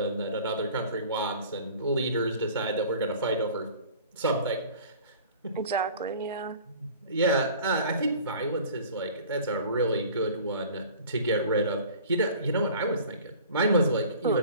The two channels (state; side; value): inverted; both; correlation -0.45